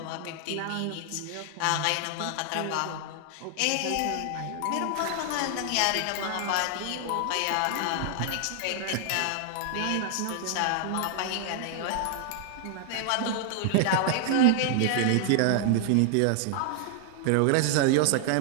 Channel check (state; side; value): different; both; correlation 0.00